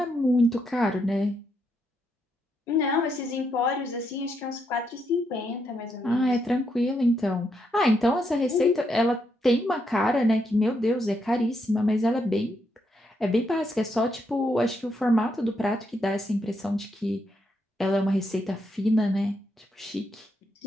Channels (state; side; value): normal; both; correlation 0.79